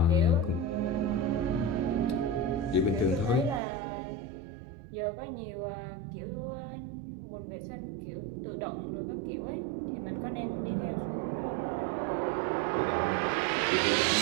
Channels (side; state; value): left; drops out; at 3.6 s